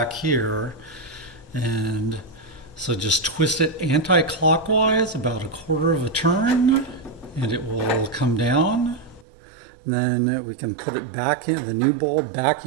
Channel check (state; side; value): drops out; left; at 9.2 s